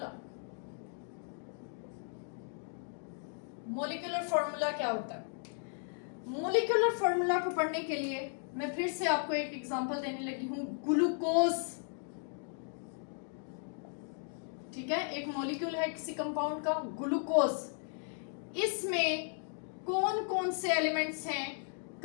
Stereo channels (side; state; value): right; silent; 54 dB below the other